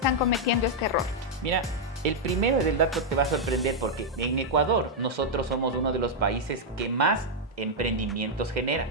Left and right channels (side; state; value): both; normal; correlation -0.03